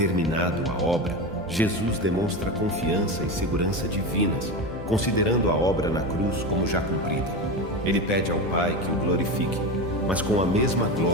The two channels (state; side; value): normal; both; correlation 0.21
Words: a obra, Jesus demonstra confiança e segurança divinas, considerando a obra na cruz como já cumprida. Ele pede ao Pai que o glorifique, mas com a mesma